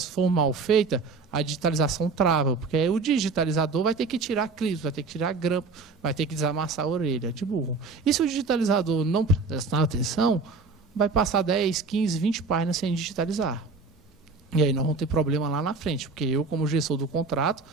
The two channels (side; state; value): left; quieter; 4.1 dB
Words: for mal feita, a digitalização trava, porque aí o digitalizador vai ter que tirar clips, vai ter que tirar grampo, vai ter que desamassar a orelha de burro. E se o digitalizador não prestar atenção, vai passar 10, 15, 20 páginas sem digitalizar. E aí nós vamos ter problema lá na frente, porque eu, como gestor do contrato,